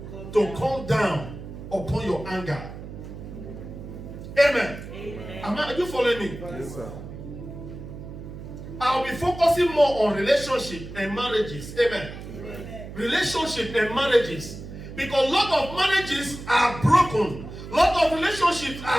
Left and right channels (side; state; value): right; noise; hum, 12 dB below the sound